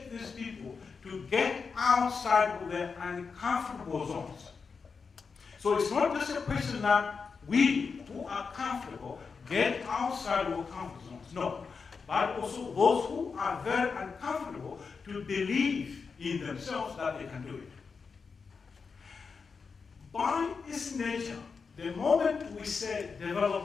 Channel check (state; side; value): quieter; right; 5.2 dB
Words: these people to get outside of their uncomfortable zones. So it's not just a question that we who are comfortable get outside of our comfort zones, no. But also those who are very uncomfortable to believe in themselves that they can do it. By its nature, the moment we say